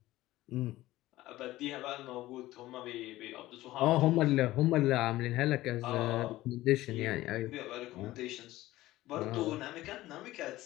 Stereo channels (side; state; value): right; quieter; 16.6 dB